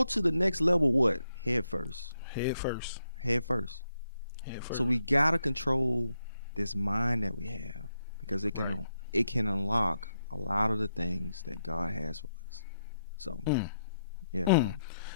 to the next level, what? Head first. Head first. Head first. Head first. So we gotta control this mind that we have, because it can unlock a lot of the things that God has for us. So yeah. Mm.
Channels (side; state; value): both; inverted; correlation -0.82